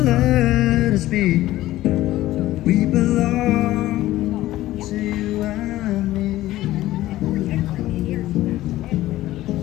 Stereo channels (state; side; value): quieter; right; 15.6 dB